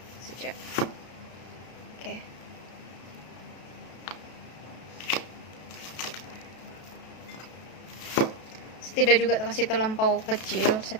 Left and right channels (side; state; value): right; late; 32 ms